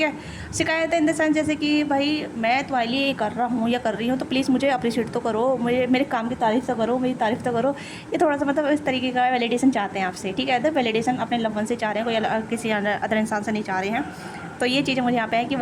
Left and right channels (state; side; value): identical; both; correlation 1.00